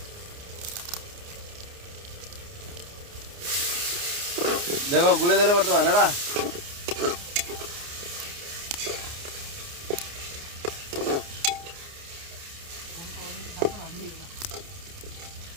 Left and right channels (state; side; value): late; left; 29 ms